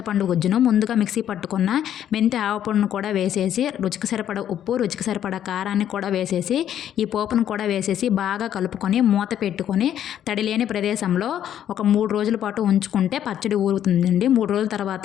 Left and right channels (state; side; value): quieter; right; 10.4 dB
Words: గుజ్జును ముందుగా మిక్సీ పట్టుకున్న మెంతి ఆవపొడిని కూడా వేసేసి రుచికి సరిపడ ఉప్పు, రుచికి సరిపడ కారాన్ని కూడా వేసేసి ఈ పోపును కూడా వేసేసి బాగా కలుపుకొని మూత పెట్టుకొని తడిలేని ప్రదేశంలో ఒక 3 రోజుల పాటు ఉంచుకుంటే పచ్చడి ఊరుతుందండి. 3 రోజుల